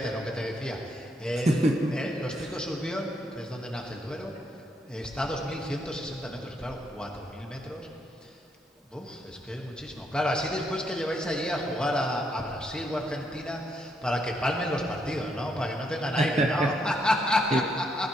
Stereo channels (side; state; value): both; normal; correlation 0.75